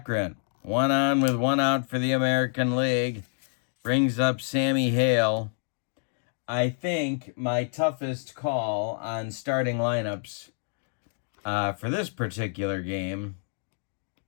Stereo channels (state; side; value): silent; right; digital silence